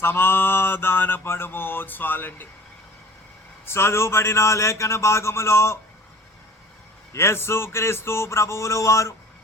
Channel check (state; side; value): normal; both; correlation 0.47